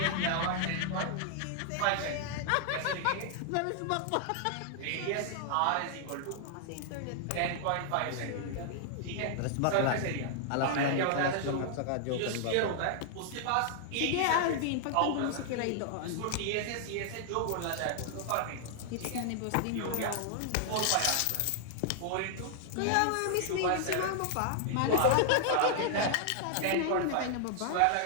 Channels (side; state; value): both; different; correlation -0.01